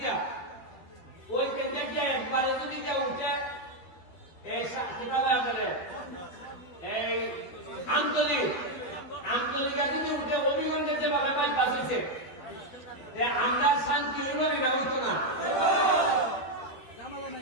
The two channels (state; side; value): late; right; 12 ms